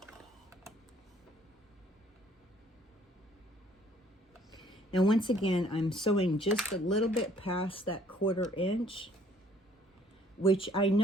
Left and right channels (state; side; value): normal; both; correlation 0.60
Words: Now, once again, I'm sewing just a little bit past that 1/4 inch, which I